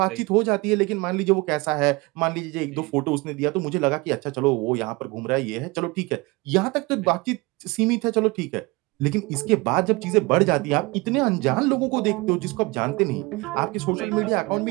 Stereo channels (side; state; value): left; quieter; 24.3 dB